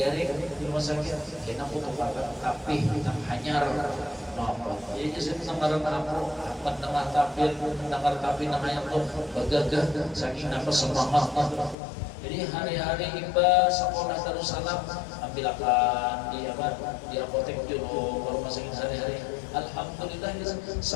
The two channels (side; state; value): right; drops out; at 11.8 s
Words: di rumah sakit, kena aku kepakan tapi nang hanyar, apa? Ya jadi nangar aku, nangar tapi nang hanyar tuh bagagah, saking apa semangat. Jadi hari-hari iba sekolah Darussalam ambil akan di apotek dulu baru masukin hari-hari. Alhamdulillah